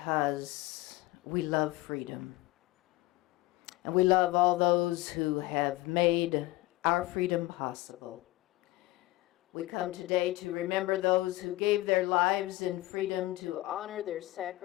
we love freedom. And we love all those who have made our freedom possible. We come today to remember those who gave their lives in freedom, to honor their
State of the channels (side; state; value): right; quieter; 18.7 dB